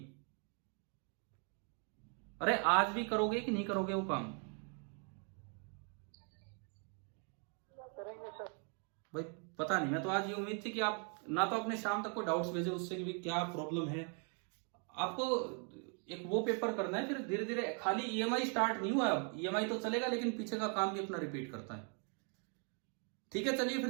अरे आज भी करोगे कि नहीं करोगे वो काम? करेंगे सर। भाई पता नहीं, मैं तो आज ये उम्मीद थी कि आप ना तो अपने शाम तक कोई डाउट्स भेजे उससे कि भी क्या प्रॉब्लम है। आपको एक वो पेपर करना है, फिर धीरे धीरे, खाली EMI स्टार्ट नहीं हुआ। अब EMI तो चलेगा लेकिन पीछे का काम भी अपना रिपीट करता है। ठीक है, चलिए फिर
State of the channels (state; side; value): quieter; left; 39.9 dB